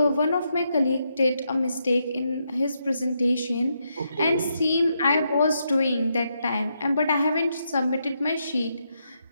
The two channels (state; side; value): inverted; both; correlation -0.80